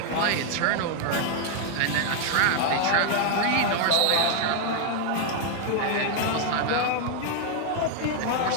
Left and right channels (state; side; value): different; both; correlation 0.00